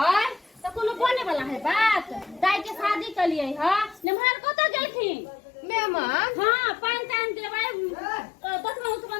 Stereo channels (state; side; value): drops out; right; at 4.0 s